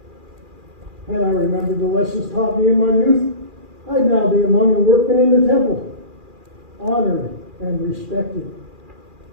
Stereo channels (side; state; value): left; late; 2.4 ms